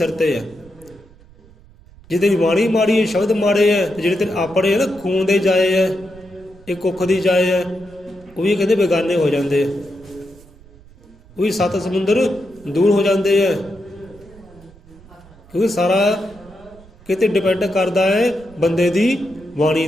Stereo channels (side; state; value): right; noise; rumble, 24 dB below the sound